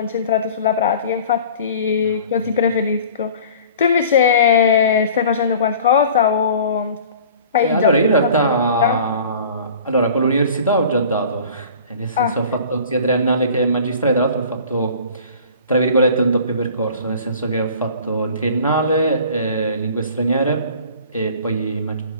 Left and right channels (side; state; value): both; inverted; correlation -0.45